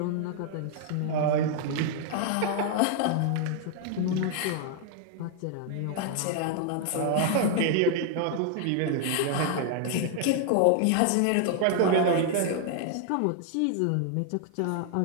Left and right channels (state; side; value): different; both; correlation 0.00